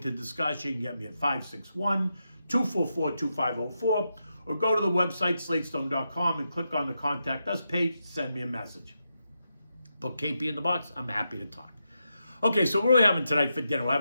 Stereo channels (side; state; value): both; inverted; correlation -0.86